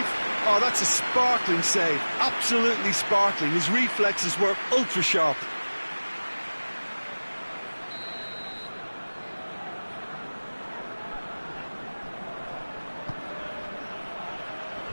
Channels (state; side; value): inverted; both; correlation -1.00